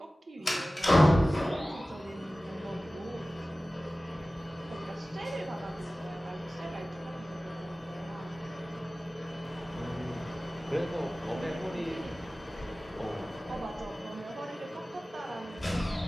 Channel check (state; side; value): normal; both; correlation 0.97